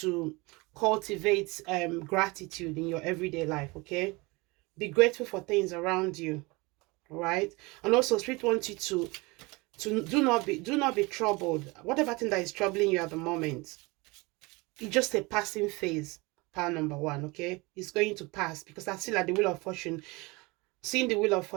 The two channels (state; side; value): quieter; left; 25.0 dB